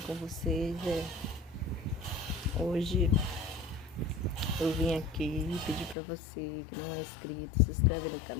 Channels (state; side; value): drops out; right; at 6.0 s